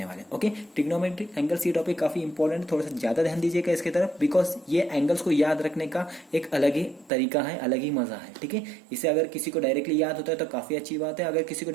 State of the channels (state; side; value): drops out; left; at 7.1 s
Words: वाले। ओके, ट्रिग्नोमेट्रिक एंगल्स ये टॉपिक काफी इंपॉर्टेंट है, थोड़ा सा ज्यादा ध्यान दीजिएगा इसके तरफ, बिकॉज ये एंगल्स को याद रखने का एक अलग ही तरीका है, अलग ही मजा है। ठीक है, इसे अगर किसी को डायरेक्टली याद होता है तो काफी अच्छी बात है, अगर किसी को